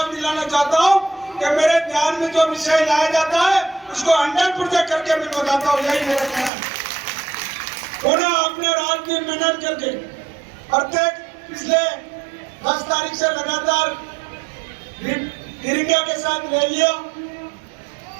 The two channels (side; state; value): left; drops out; at 6.5 s